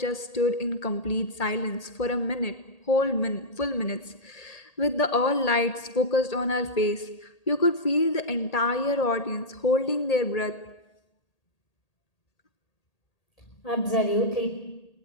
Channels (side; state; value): right; late; 1.8 ms